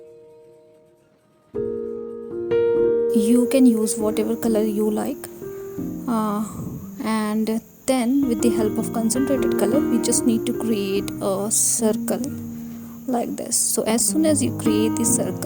You can use whatever color you like, and then with the help of concentrated color we just need to create a circle like this. So as soon as you create the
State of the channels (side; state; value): both; identical; correlation 1.00